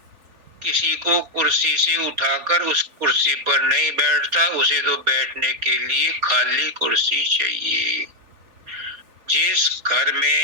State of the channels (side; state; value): left; late; 3.4 ms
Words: किसी को कुर्सी से उठाकर उस कुर्सी पर नहीं बैठता, उसे तो बैठने के लिए खाली कुर्सी चाहिए। जिस घर